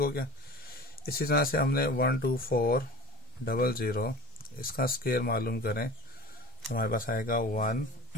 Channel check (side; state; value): both; normal; correlation 0.37